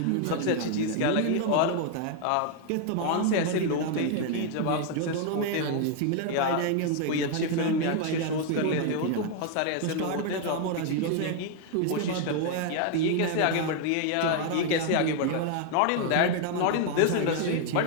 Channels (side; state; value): both; different; correlation 0.00